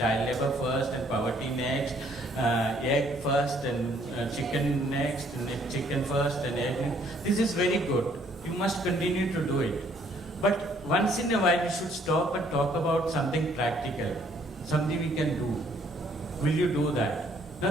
labor first, and poverty next. Egg first, and chicken next, and chicken first, and egg. This is very good. You must continue to do it. But once in a while, you should stop and talk about something practical, something we can do. Will you do that?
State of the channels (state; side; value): normal; both; correlation 0.64